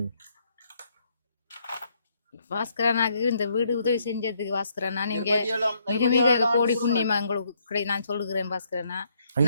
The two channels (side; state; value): both; inverted; correlation -0.73